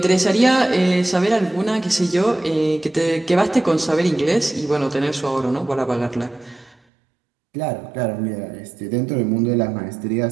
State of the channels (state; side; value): drops out; left; at 6.8 s